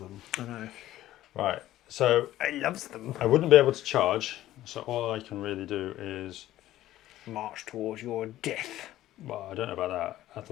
I know. Right. So He loves them. I wouldn't be able to charge. So all I can really do is March towards your death. Well, I don't know about that. I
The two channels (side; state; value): right; quieter; 14.3 dB